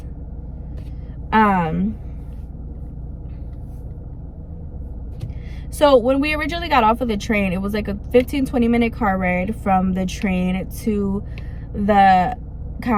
So when we originally got off of the train, it was like a 15-20 minute car ride from the train to the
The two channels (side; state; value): both; identical; correlation 1.00